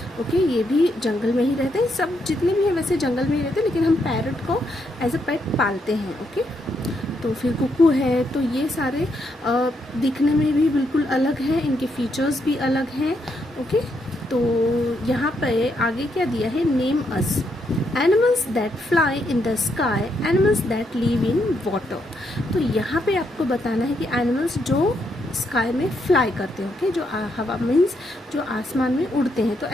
ओके, ये भी जंगल में ही रहते हैं। सब जितने भी हैं वैसे जंगल में ही रहते हैं, लेकिन हम पैरट को एज अ पेट पालते हैं। ओके, तो फिर कुकू है। तो ये सारे दिखने में भी बिल्कुल अलग हैं, इनके फीचर्स भी अलग हैं। ओके, तो यहाँ पे आगे क्या दिया है, name us animals that fly in the sky, animals that live in water. तो यहाँ पे आपको बताना है कि एनिमल्स जो स्काई में फ्लाई करते हैं। ओके, जो हवा मीन्स जो आसमान में उड़ते हैं। तो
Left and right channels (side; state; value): both; normal; correlation 0.78